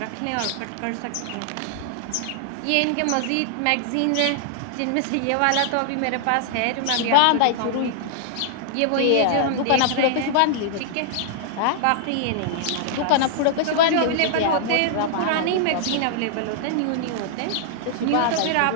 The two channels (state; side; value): different; both; correlation -0.01